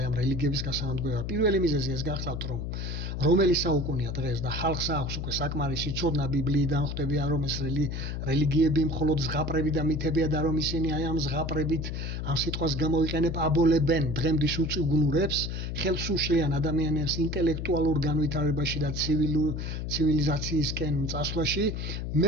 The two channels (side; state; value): left; noise; hum, 4 dB below the sound